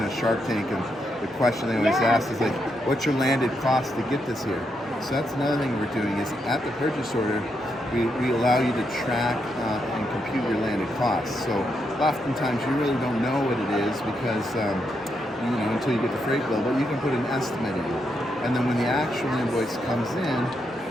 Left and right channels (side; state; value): both; normal; correlation 0.81